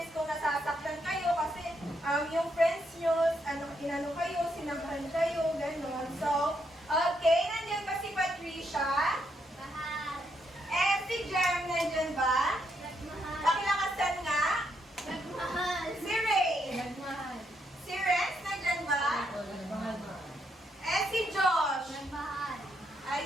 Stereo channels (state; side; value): normal; both; correlation 0.77